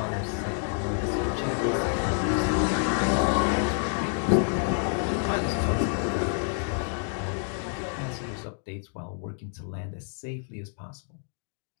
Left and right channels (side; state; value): right; silent; 59 dB below the other